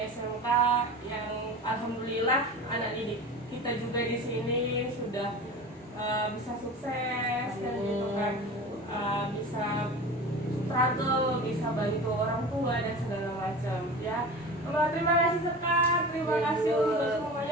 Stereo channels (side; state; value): both; normal; correlation 0.34